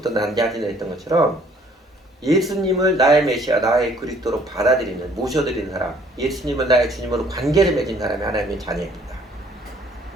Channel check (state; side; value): normal; both; correlation 0.59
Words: 난 자들이라 했던 것처럼, 예수님을 나의 메시아, 나의 그리스도로 받아들이는, 모셔드리는 사람, 예수님을 나의 주님으로 관계를 맺은 사람이 하나님의 자녀입니다.